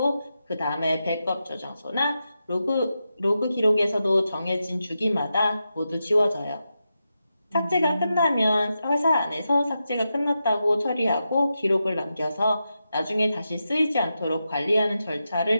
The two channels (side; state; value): both; inverted; correlation -0.88